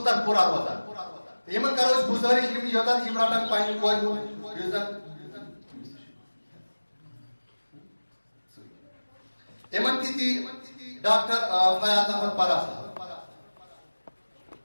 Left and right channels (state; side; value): inverted; both; correlation -1.00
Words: پورا روزان. یمن کرو گزارش یوتن یم رٹن پنہ کور ہند زن یمن تھی ڈاکٹر فیاض احمد پرا صاحب.